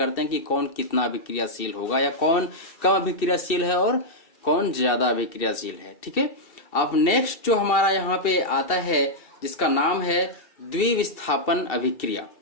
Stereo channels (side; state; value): right; late; 2.7 ms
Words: हैं कि कौन कितना अभिक्रियाशील होगा या कौन कम अभिक्रियाशील है और कौन ज्यादा अभिक्रियाशील है। ठीक है, अब नेक्स्ट जो हमारा यहाँ पे आता है जिसका नाम है द्विविस्थापन अभिक्रिया।